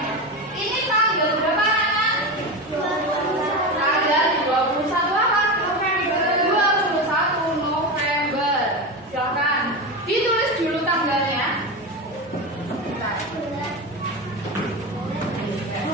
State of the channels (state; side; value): normal; both; correlation 0.20